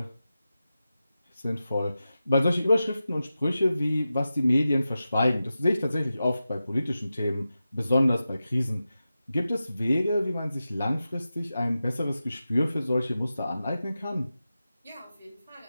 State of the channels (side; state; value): both; inverted; correlation -0.92